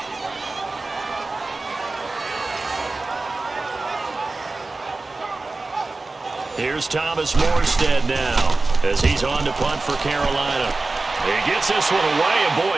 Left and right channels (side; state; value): left; quieter; 3.4 dB